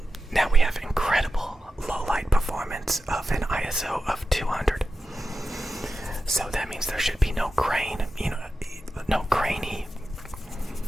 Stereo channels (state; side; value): normal; both; correlation 0.92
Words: now we have incredible low light performance of an ISO of 200. So that means there should be no grain, no grain